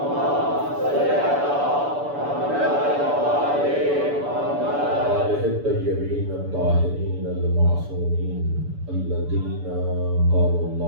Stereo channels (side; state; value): left; late; 6.9 ms